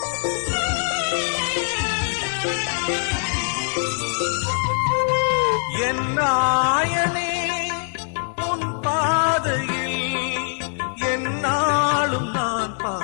என் நாயனே உன் பாதையில் என்னாலும் நான்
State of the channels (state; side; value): silent; right; 64 dB below the other